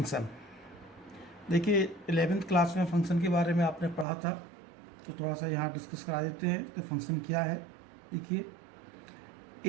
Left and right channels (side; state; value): left; drops out; at 4.0 s